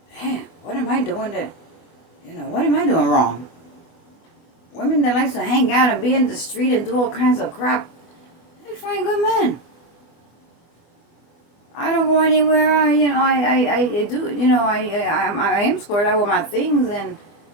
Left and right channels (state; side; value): late; right; 24 ms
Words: Damn, what am I doing that? What am I doing wrong? Women that likes to hang out and be in the street and do all kinds of crap, they find good men. I don't go anywhere. I do. I am squared out with my things, and